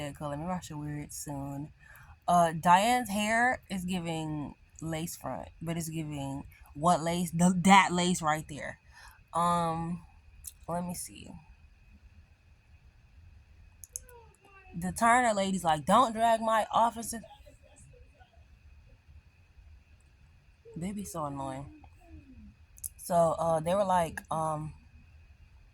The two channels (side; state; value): both; identical; correlation 1.00